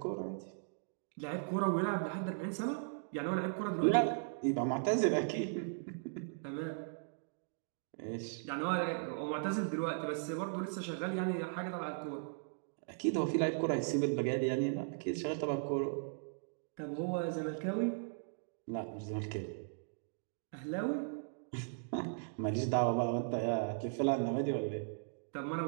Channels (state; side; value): silent; left; digital silence